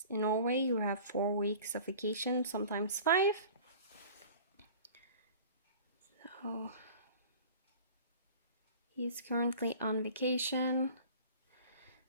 in Norway, you have 4 weeks of vacation, sometimes 5. So he's currently on vacation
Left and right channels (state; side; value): inverted; both; correlation -0.43